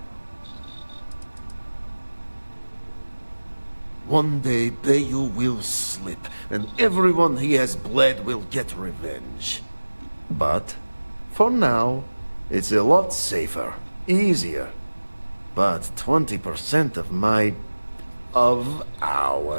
One day, Bayu will slip, and everyone he has bled will get revenge. But, for now, it's a lot safer, easier. But 20% of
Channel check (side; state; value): both; inverted; correlation -1.00